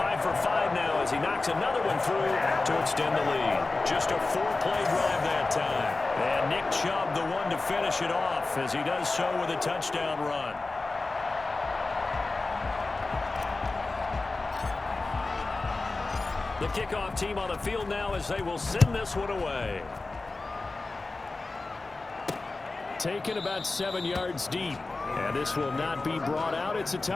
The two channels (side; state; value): right; quieter; 3.4 dB